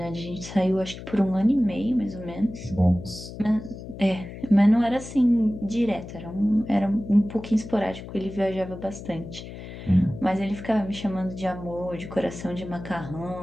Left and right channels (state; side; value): noise; left; hum, 12 dB below the sound